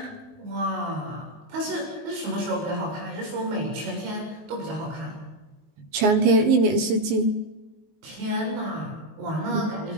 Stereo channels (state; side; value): late; left; 19 ms